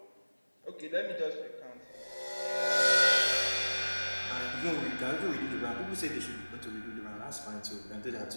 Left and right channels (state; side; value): inverted; both; correlation -1.00